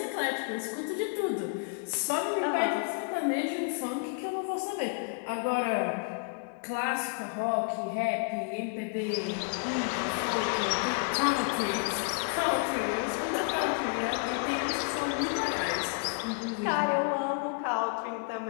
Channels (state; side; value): quieter; right; 37.5 dB